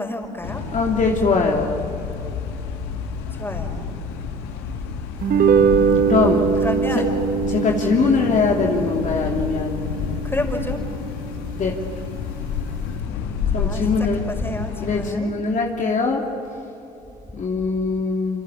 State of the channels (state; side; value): normal; both; correlation 0.44